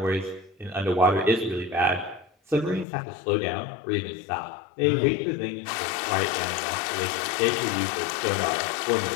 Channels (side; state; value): right; drops out; at 2.9 s